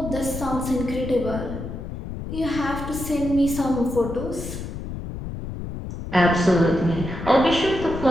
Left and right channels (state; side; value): noise; left; rumble, 8 dB below the sound